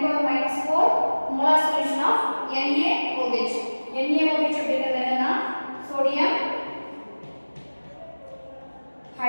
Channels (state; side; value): inverted; both; correlation -1.00